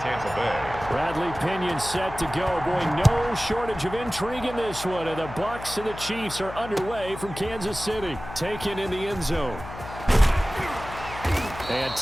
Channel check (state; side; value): noise; left; hum, 12 dB below the sound